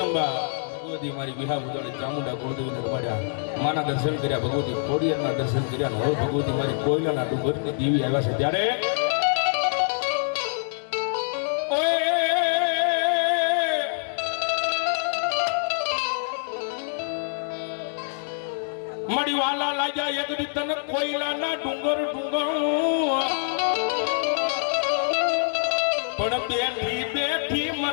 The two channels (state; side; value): silent; right; digital silence